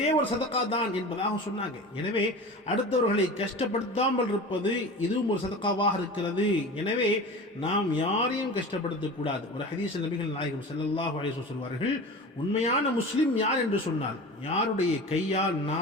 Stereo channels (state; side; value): normal; both; correlation 0.34